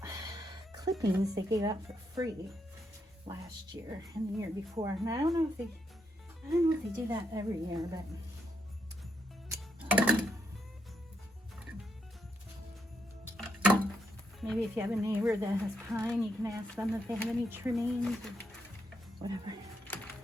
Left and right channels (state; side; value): normal; both; correlation 0.79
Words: clippings they gave out for free last year and the year before, and I don't know if they do that every year, but maybe if you have a neighbor that has pine, you can ask them if they have any trimmings or whatever.